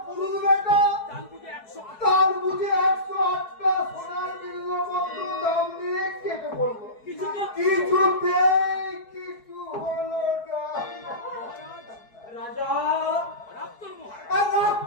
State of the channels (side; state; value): right; late; 4.7 ms